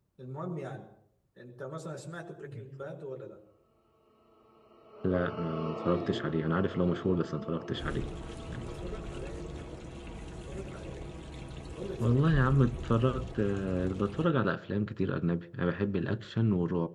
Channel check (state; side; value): identical; both; correlation 1.00